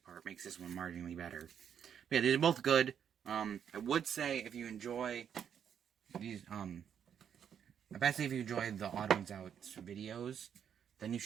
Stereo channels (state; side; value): quieter; left; 8.4 dB